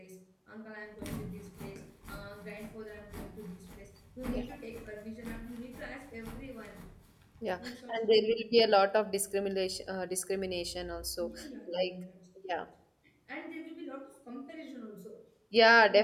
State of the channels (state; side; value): identical; both; correlation 1.00